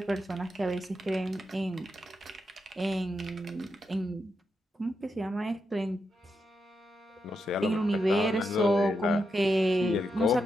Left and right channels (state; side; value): normal; both; correlation 0.85